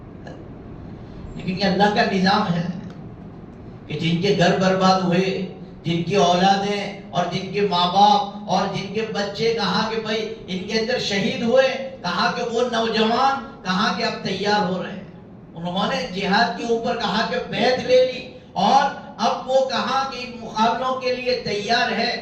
لیکن یہ اللہ کا نظام ہے کہ جن کے گھر برباد ہوئے، جن کی اولادیں اور جن کے ماں باپ اور جن کے بچے کہا کہ بھائی ان کے اندر شہید ہوئے، کہا کہ وہ نوجوان کہا کہ اب تیار ہو رہے ہیں. انہوں نے جہاد کے اوپر کہا کہ بیعت لے لی اور اب وہ کہا کہ ان مقابلوں کے لیے تیار ہے.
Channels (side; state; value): both; identical; correlation 1.00